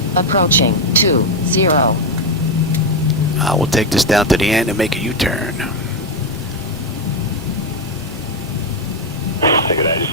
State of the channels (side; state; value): both; normal; correlation 0.06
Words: Approaching 20. We'll take this down to the end and make a U-turn. Take it out, just